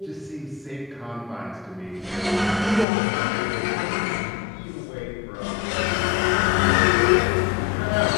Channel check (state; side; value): drops out; right; at 2.9 s